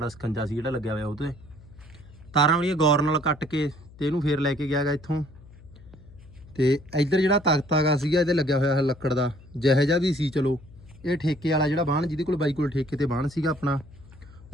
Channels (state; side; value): noise; left; hum, 21 dB below the sound